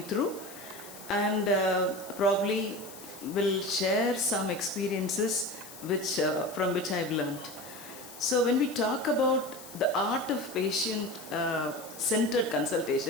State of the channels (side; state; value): left; noise; hiss, 16 dB below the sound